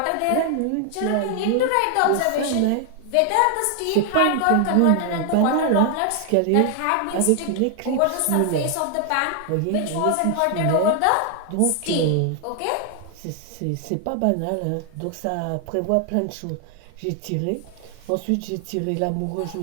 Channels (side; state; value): both; different; correlation 0.00